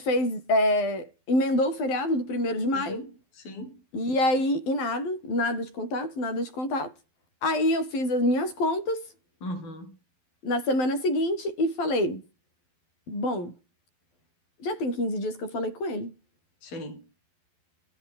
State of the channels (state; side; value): late; right; 12 ms